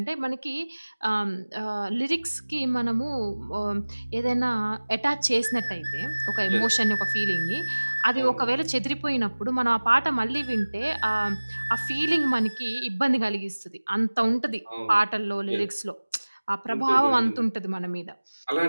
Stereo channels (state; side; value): inverted; both; correlation -1.00